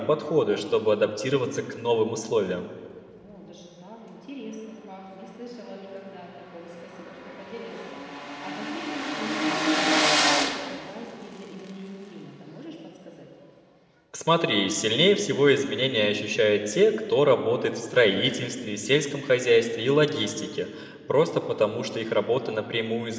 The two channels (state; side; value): identical; both; correlation 1.00